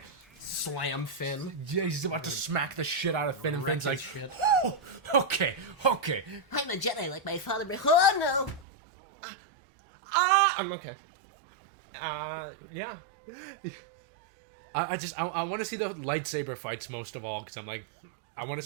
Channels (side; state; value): left; drops out; at 8.7 s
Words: Slam Finn. Yeah, he's about to smack the shit out of Finn, and Wreck Finn's like, his shit. "Oh, okay. I'm a Jedi like my father, but oh no! I'm okay. Yeah. I want to see the lightsaber fights most of all, because I'm like, I want